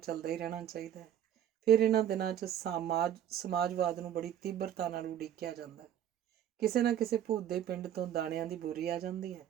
ਹੀ ਰਹਿਣਾ ਚਾਹੀਦਾ। ਫਿਰ ਇਹਨਾਂ ਦਿਨਾਂ 'ਚ ਸਮਾਜਵਾਦ ਨੂੰ ਬੜੀ ਤੀਬਰਤਾ ਨਾਲ ਉਡੀਕਿਆ ਜਾਂਦਾ। ਕਿਸੇ ਨਾ ਕਿਸੇ ਭੂਤ ਦੇ ਪਿੰਡ ਤੋਂ ਦਾਣਿਆਂ ਦੀ ਬੋਰੀ ਆ ਜਾਂਦੀ ਹੈ।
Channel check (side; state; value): left; quieter; 10.6 dB